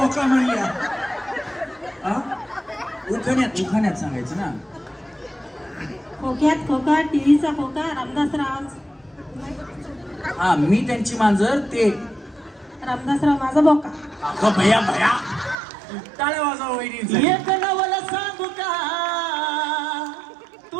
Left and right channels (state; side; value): drops out; left; at 15.6 s